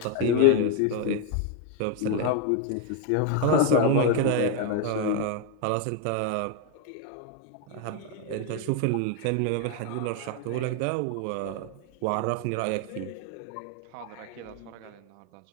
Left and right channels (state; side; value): different; both; correlation 0.01